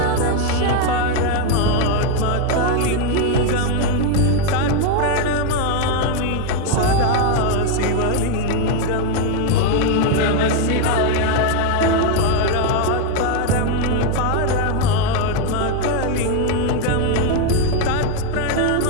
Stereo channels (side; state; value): both; different; correlation 0.01